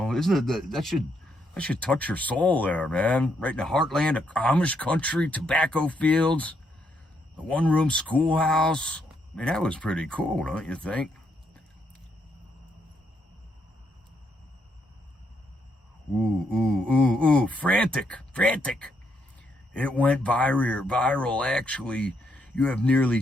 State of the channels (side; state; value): both; normal; correlation 0.76